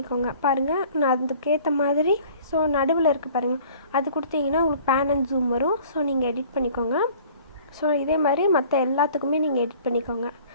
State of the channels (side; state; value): both; inverted; correlation -0.50